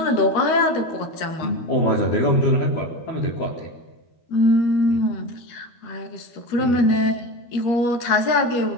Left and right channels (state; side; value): late; right; 12 ms